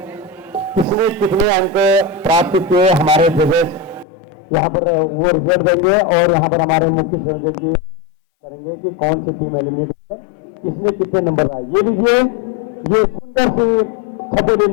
किसने कितने अंक प्राप्त किए हमारे जजेस यहाँ पर वो रिजल्ट देंगे और यहाँ पर हमारे मुख्य संयोजक जी उसको घोषणा करेंगे कि कौन सी टीम एलिमिनेट हुई है, किसने कितने नंबर आए। ये लीजिए, ये सुंदर सी छपेली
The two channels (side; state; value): right; drops out; at 4.0 s